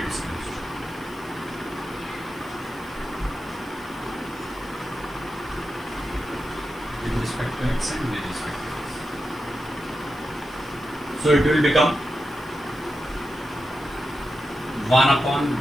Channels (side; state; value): left; noise; hiss, 25 dB below the sound